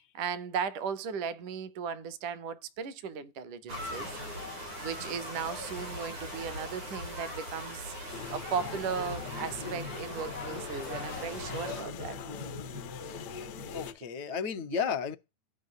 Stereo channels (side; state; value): left; late; 9.7 ms